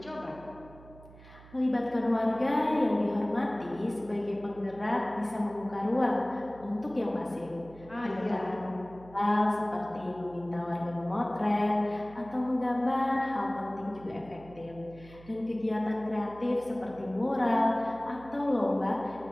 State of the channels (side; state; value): right; noise; hum, 20 dB below the sound